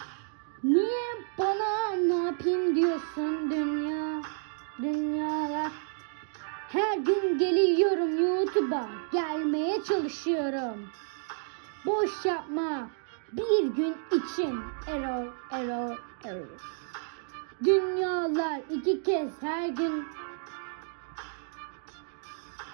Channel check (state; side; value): silent; left; digital silence